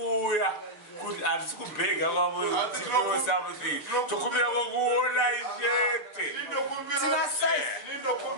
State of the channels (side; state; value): right; late; 6.8 ms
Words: kuti hatisi kubhega kwavo tino something tokumbira kokuona chete